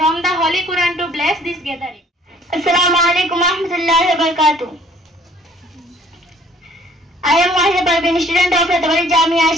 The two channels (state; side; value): normal; both; correlation 0.57